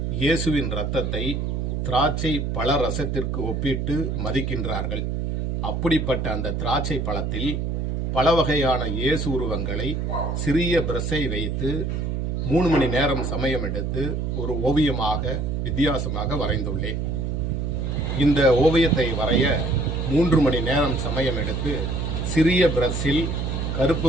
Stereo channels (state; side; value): noise; right; hum, 1 dB below the sound